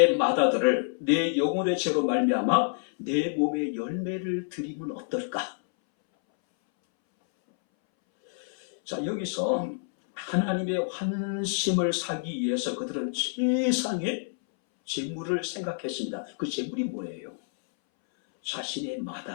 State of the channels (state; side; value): silent; right; 59 dB below the other